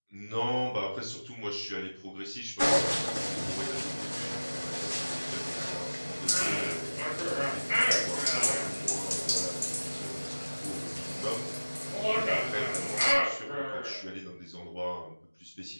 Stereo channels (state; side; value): inverted; both; correlation -1.00